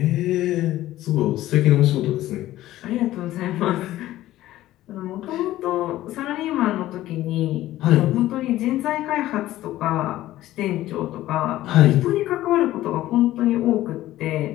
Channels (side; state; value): right; quieter; 15.0 dB